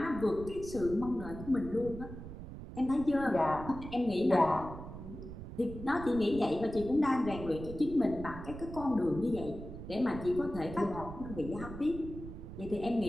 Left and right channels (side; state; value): right; noise; rumble, 11 dB below the sound